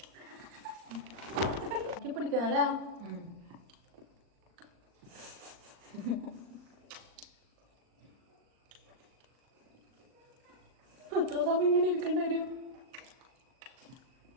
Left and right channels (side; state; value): left; late; 39 ms